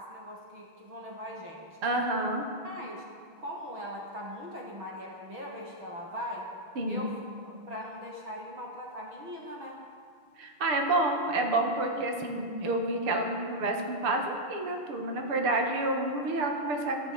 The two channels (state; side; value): late; left; 6.7 ms